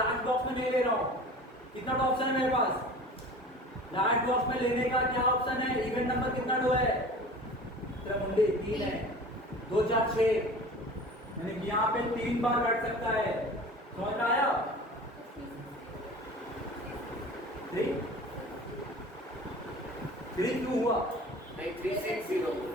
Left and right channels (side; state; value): both; normal; correlation 0.39